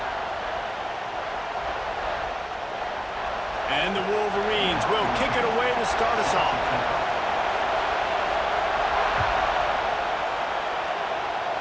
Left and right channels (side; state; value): both; identical; correlation 1.00